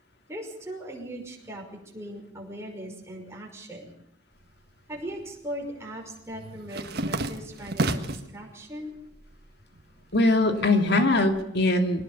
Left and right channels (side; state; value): both; normal; correlation 0.50